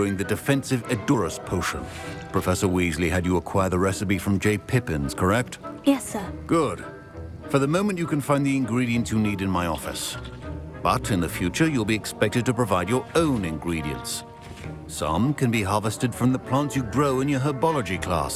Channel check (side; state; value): both; identical; correlation 1.00